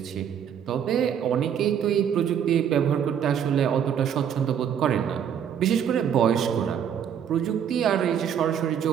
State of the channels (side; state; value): left; quieter; 8.6 dB